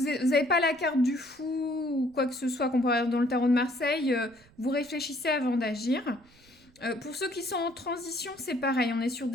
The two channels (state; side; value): noise; right; rumble, 28 dB below the sound